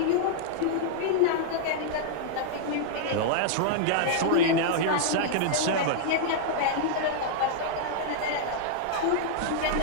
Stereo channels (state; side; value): different; both; correlation -0.01